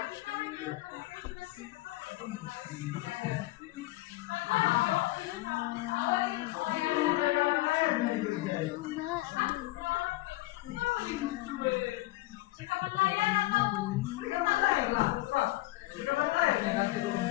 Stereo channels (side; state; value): right; quieter; 19.0 dB